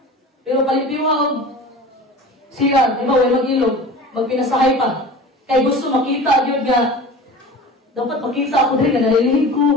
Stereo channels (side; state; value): both; normal; correlation 0.37